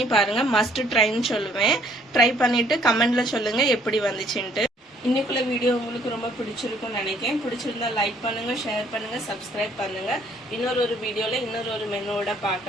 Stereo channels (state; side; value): normal; both; correlation 0.63